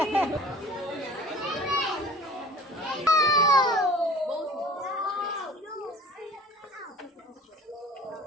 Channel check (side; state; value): both; normal; correlation 0.46